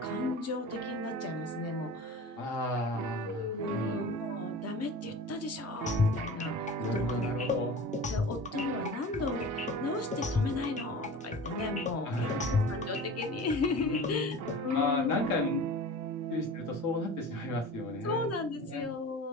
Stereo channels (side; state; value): both; normal; correlation 0.37